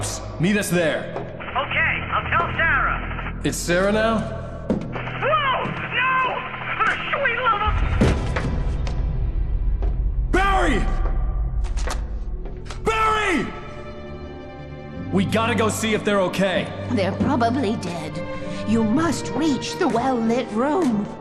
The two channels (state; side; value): identical; both; correlation 1.00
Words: Meet us there. Okay, I'll tell Sarah. It's Sarah now? Whoa! No! For the sweet love of... Barry! Barry! We gotta go see if they're okay. They're probably dead. You must reach the well-lit room.